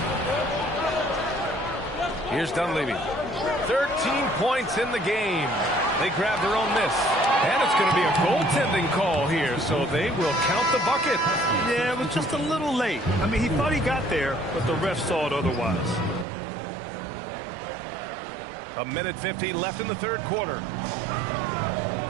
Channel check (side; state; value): left; drops out; at 16.2 s